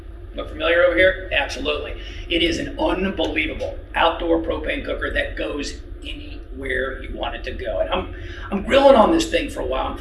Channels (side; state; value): both; identical; correlation 1.00